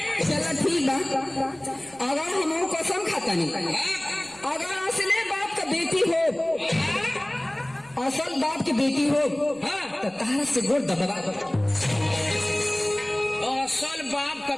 चला ठीक बा अगर हम कसम खाता तनी अगर असले बाप का बेटी हो, असल बाप की बेटी हो तो तारा से गोड़ दबा। असल बाप का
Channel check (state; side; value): noise; right; rumble, 28 dB below the sound